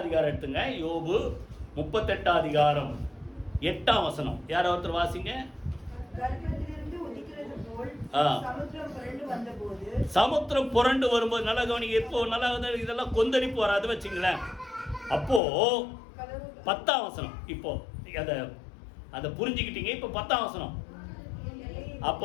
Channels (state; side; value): drops out; right; at 15.4 s